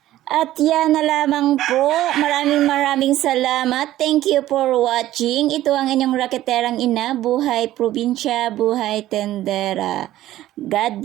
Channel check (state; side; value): quieter; left; 14.3 dB